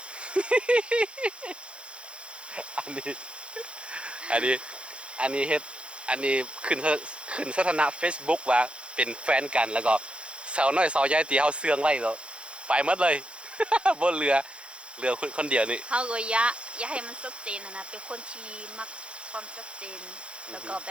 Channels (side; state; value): left; late; 0.058 ms